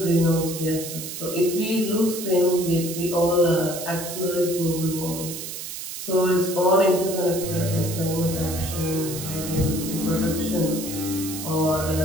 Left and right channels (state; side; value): noise; right; hiss, 8 dB below the sound